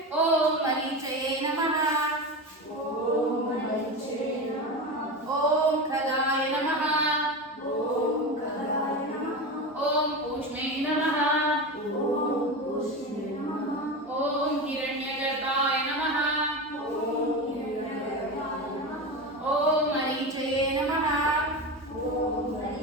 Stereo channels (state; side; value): normal; both; correlation 0.22